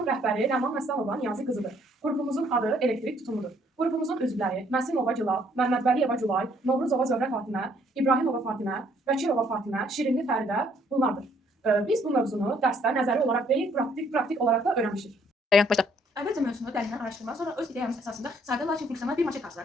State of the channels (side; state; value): both; normal; correlation 0.65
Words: rəhbəri Ləman Məsəlova Niyazi qızıdır. Qrupumuzun adı elektrik tutumudur. Qrupumuzun üzvləri Məsimova Gülal, Məmmədvəliyeva Gülay, Novruzova Zöhrə Fatimə, İbrahimova Fatimə, Vəkilova Fatimə, Şirinli Fəridə bunlardır. Biz bu mövzunu dərsdə nəzəri olaraq deyil, praktik olaraq da öyrənmişik. Əvvəlcə mövzunu dərindən araşdırmaq, sonra öz ideyamız əsasında sadə lakin funksional bir maket